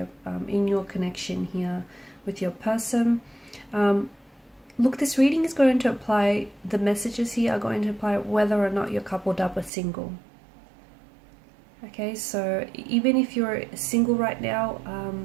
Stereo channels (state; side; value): drops out; left; at 9.7 s